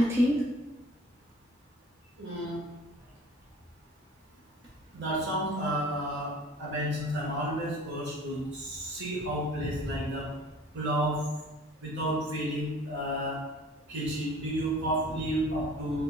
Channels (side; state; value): both; normal; correlation 0.47